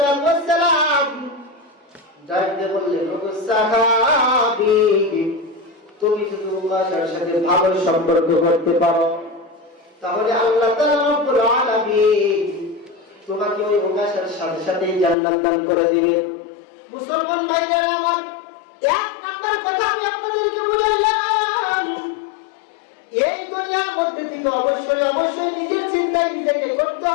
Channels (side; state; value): right; drops out; at 15.2 s